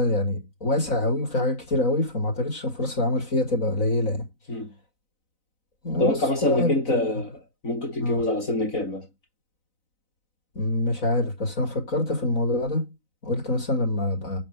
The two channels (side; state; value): right; late; 4.0 ms